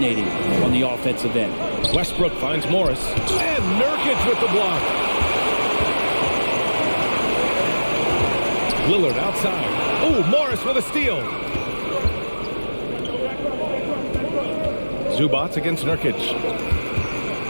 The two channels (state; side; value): inverted; both; correlation -1.00